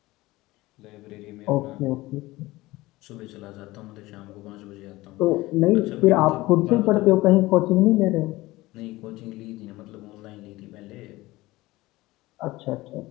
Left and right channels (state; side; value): quieter; right; 19.2 dB